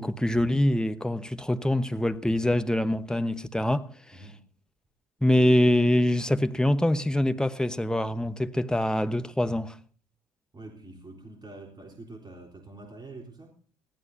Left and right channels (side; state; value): both; normal; correlation 0.96